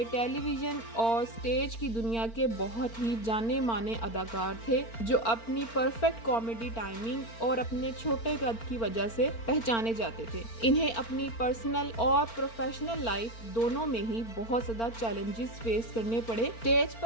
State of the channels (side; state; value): right; late; 4.4 ms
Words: टेलीविजन और स्टेज की दुनिया के बहुत ही जाने माने अदाकार थे जो अपनी परफेक्ट कॉमेडी टाइमिंग और अपने छोटे कद की वजह से पहचाने जाते थे। इन्हें अपनी पर्सनल और प्रोफेशनल लाइफ दोनों में ही बहुत ज्यादा चैलेंजेस फेस करने पड़े। स्टेज